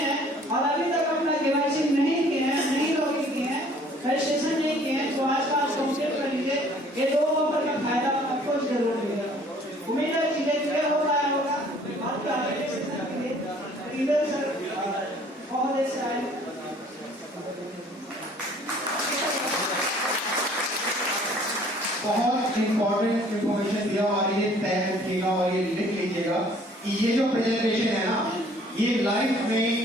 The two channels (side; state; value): both; normal; correlation 0.56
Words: और अभी तक अपना केवाईसी नहीं किए हैं, नहीं लॉगिन किए हैं, रजिस्ट्रेशन नहीं किए हैं, तो आज का कंप्लीट कर लीजिए। ये 2 ऑफर का फायदा आपको जरूर मिलेगा। उम्मीद है चीजें क्लियर हो पाया होगा। आपके आगे सेशन के लिए इधर सर बहुत देर से आए। बहुत इंपॉर्टेंट इंफॉर्मेशन दिया और ये तय रखिएगा और ये लिख लीजिएगा कि ये जो प्रेजेंटेशन है ना, ये लाइफ